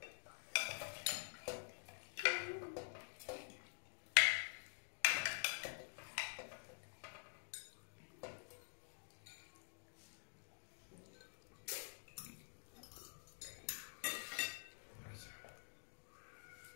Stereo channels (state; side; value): silent; right; digital silence